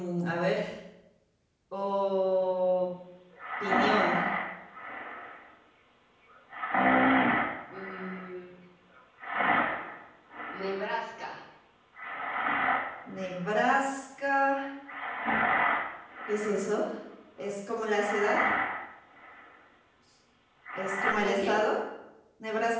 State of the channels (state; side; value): identical; both; correlation 1.00